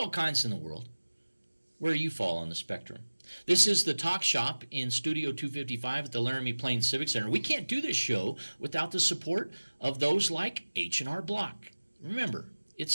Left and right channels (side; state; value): both; inverted; correlation -1.00